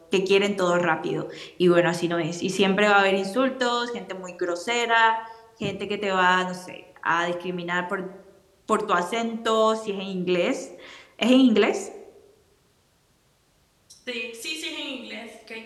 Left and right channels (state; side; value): identical; both; correlation 1.00